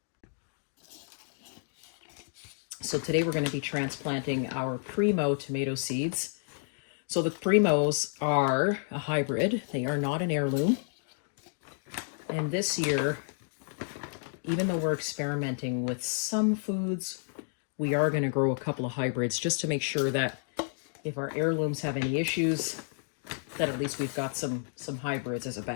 So today we're going to be transplanting our Primo tomato seeds. So the Primos are a hybrid. They are not an heirloom. And this year, even though we're experimenting with some foods, we are going to grow a couple of hybrids just to make sure that if our heirlooms have any issues, that at least we've got some hybrids as a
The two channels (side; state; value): right; silent; digital silence